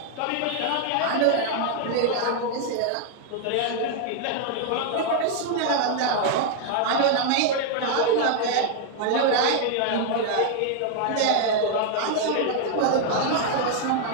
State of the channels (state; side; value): different; both; correlation 0.00